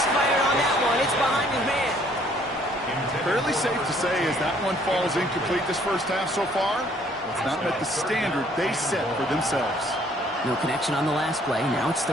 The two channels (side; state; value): both; normal; correlation 0.62